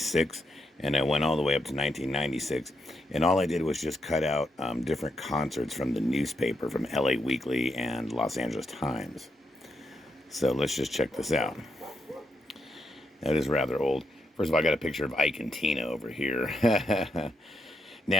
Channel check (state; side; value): normal; both; correlation 0.81